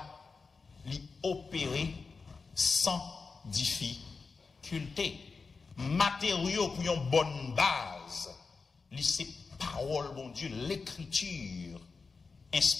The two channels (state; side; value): quieter; right; 4.6 dB